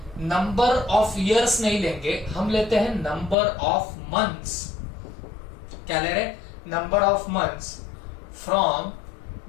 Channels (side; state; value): right; drops out; at 3.4 s